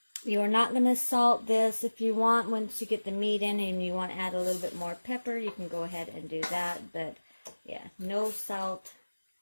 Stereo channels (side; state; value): both; inverted; correlation -1.00